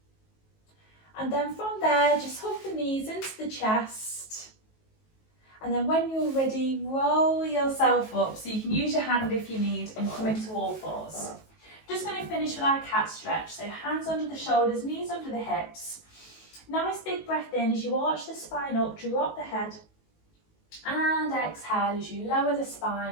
And then from there, just hug the knees into the chest. And then when you're ready, roll yourself up. So you can use your hand if you need and come into all fours. Just going to finish with our cat stretch. So hands under the shoulders, knees under the hips. Nice big breath in as you arch the spine up, drop the head. And exhale as you lower the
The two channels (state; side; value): late; right; 19 ms